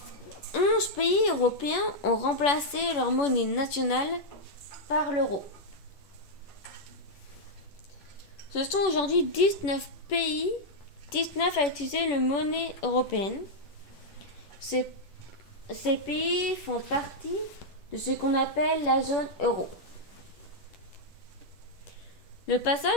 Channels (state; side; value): late; right; 10 ms